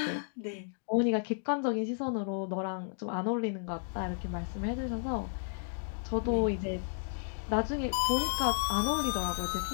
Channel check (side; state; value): right; silent; digital silence